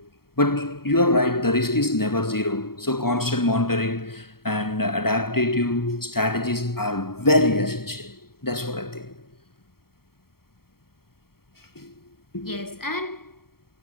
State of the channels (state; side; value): late; right; 0.94 ms